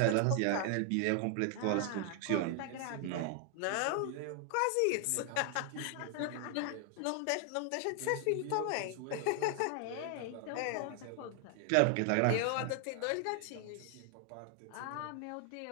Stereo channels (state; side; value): different; both; correlation 0.00